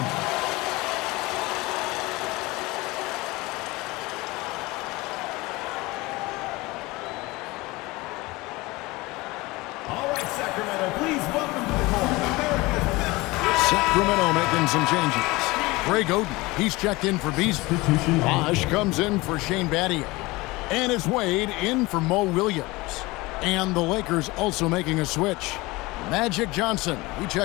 Sacramento making some changes. Greg Oden, he's checked in for Beasley. Bosch comes in for Shane Battier. And it's Wade in for Mo Williams. And the Lakers also making a switch. Magic Johnson, he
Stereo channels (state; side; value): quieter; right; 22.0 dB